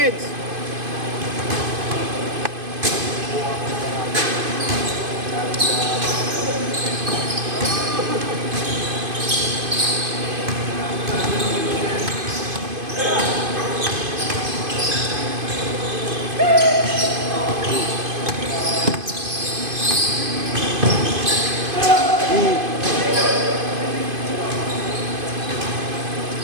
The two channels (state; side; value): late; left; 2.5 ms